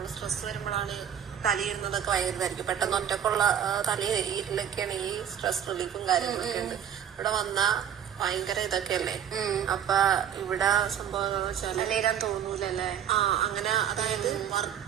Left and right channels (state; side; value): quieter; left; 9.3 dB